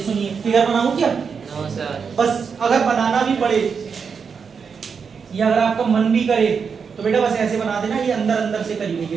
फिगर बनाऊं क्या? No sir. बस अगर बनाना भी पड़े या अगर आपका मन भी करे तो बेटा बस ऐसे बना देना, ये अंदर अंदर से करी हुई है,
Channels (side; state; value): left; quieter; 6.0 dB